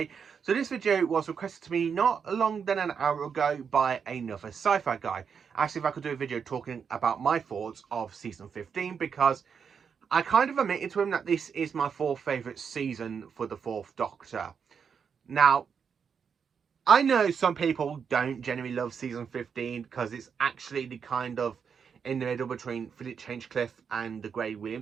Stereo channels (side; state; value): left; quieter; 6.6 dB